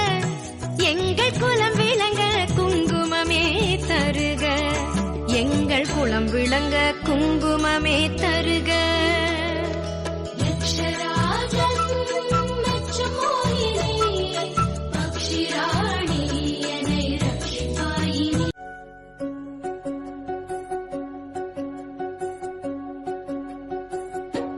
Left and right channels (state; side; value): identical; both; correlation 1.00